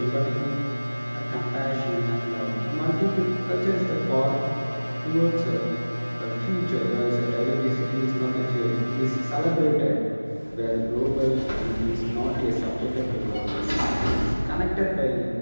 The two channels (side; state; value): both; inverted; correlation -1.00